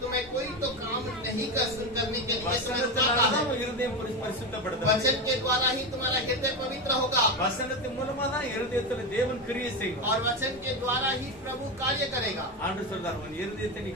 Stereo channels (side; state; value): both; normal; correlation 0.16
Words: तुम्हें कोई तो काम नहीं कर करने के लिए तुम्हें रुकाता है। வசனத்தினால இருதயம் பரிசுத்தப்படுது. वचन के द्वारा ही तुम्हारा हृदय पवित्र होगा வசனத்தின் மூலமா தான் இருதயத்துல தேவன் கிரியை செய்வார். और वचन के द्वारा ही प्रभु कार्य करेगा। ஆண்டவர் சொல்றார், உன் இருதயத்தை நீ